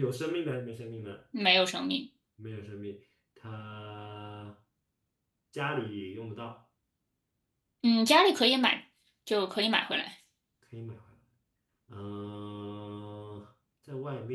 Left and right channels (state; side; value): identical; both; correlation 1.00